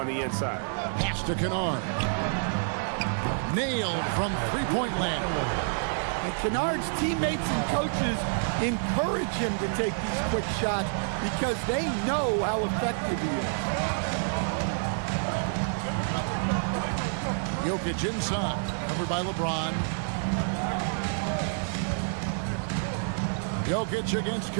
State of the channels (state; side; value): silent; left; 59 dB below the other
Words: the inside. Pass to Kennard. Nailed from three-point land. And Kennard's teammates and coaches encourage him to take these quick shots because they know how effective he is. Jokic inside, covered by LeBron. Jokic against